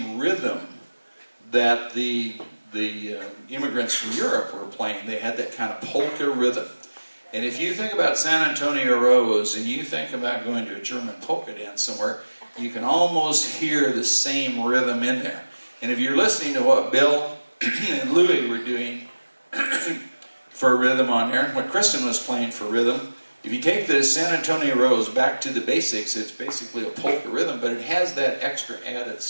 rhythm that the immigrants from Europe were playing. They had that kind of polka rhythm. And if you think about San Antonio Rose and you think about going to a German polka dance somewhere, you can almost hear the same rhythm in there. And if you're listening to what Bill and Louie were doing for rhythm on there, what Kristyn was playing for rhythm, if you take the San Antonio Rose back to the basics, it's basically a polka rhythm, but it has that extra added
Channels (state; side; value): inverted; both; correlation -1.00